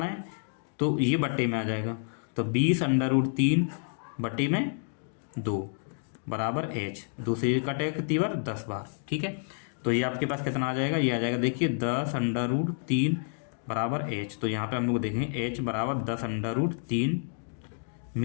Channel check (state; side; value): silent; right; digital silence